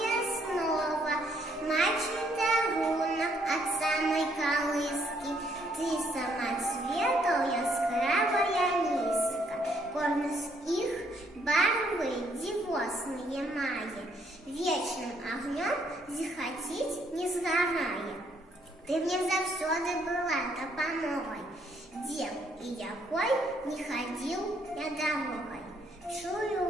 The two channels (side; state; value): both; normal; correlation 0.69